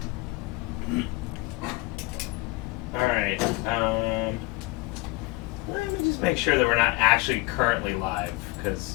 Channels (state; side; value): quieter; right; 22.0 dB